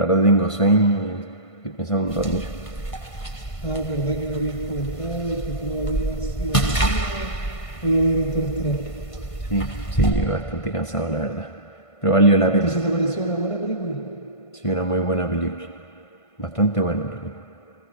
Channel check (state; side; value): late; right; 1.5 ms